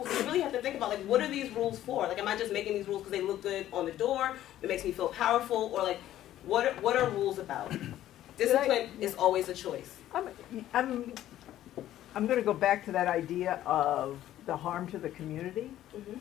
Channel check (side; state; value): right; quieter; 12.9 dB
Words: we really have to think about what are these rules for? Am I just making these rules because they look good on the door? It makes me feel powerful, or what are rules about? Discipline is always a choice. I'm going to go back to that idea of the harm to the community. Mm-hmm.